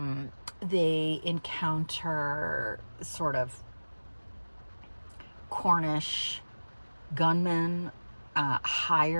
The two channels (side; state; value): both; inverted; correlation -1.00